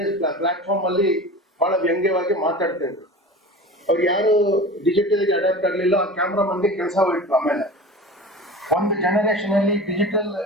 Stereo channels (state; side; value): normal; both; correlation 0.35